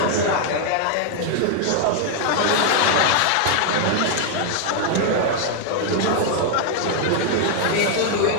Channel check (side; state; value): both; different; correlation 0.00